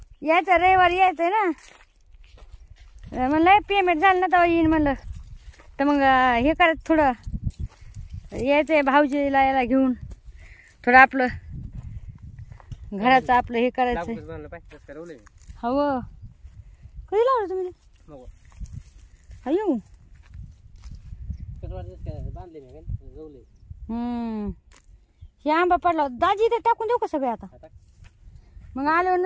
यायचं रविवारी यायचंय ना. म्हणलं पेमेंट झालं ना तेव्हा येईन म्हणलं. तर मग हे करायचं थोडं, यायचंय भाऊजीला याला घेऊन. थोडं आपलं घराचं आपलं हे करायचंय. हो कधी लावलं तुम्ही? अयो हे आंबा पडला दाजी, ते टाकून देऊ का सगळे आता? मग आल्यावर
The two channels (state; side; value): identical; both; correlation 1.00